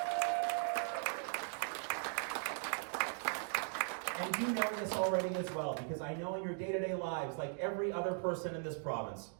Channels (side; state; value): left; silent; 52 dB below the other